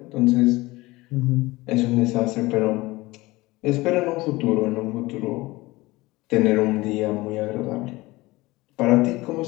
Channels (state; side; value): quieter; right; 20.6 dB